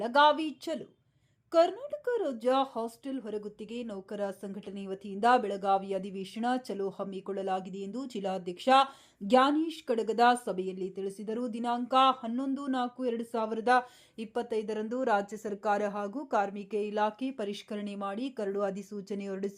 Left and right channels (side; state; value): both; identical; correlation 1.00